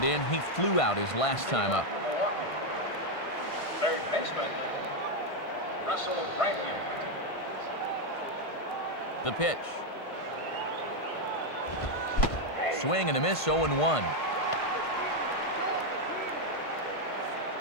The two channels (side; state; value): right; late; 1.5 ms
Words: in. He flew out his last time up. Milwaukee. Third baseman, Russell Branyan. The pitch. Swing and a miss, 0-1.